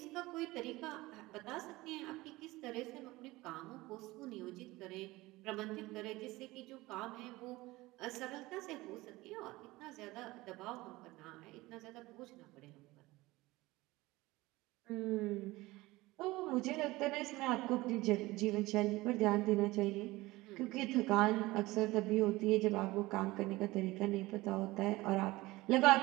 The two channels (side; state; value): left; quieter; 19.9 dB